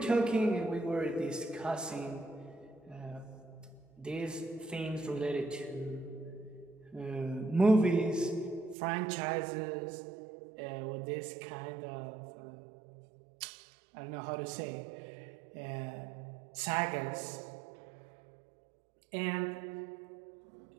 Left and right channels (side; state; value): left; drops out; at 8.8 s